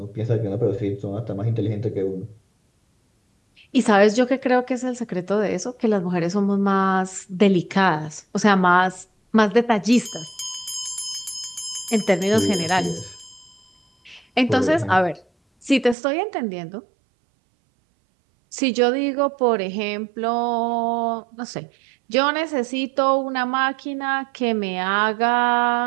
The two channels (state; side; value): drops out; left; at 16.0 s